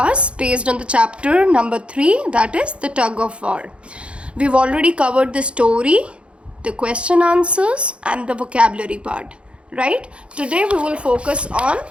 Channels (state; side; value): late; left; 0.059 ms